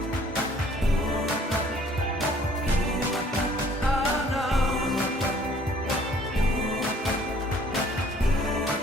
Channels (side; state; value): both; normal; correlation 0.57